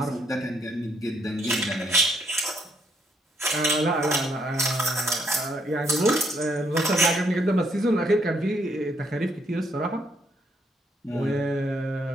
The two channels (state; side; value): normal; both; correlation 0.71